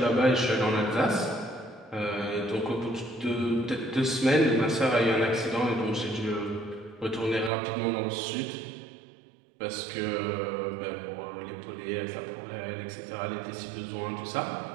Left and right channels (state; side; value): drops out; left; at 7.5 s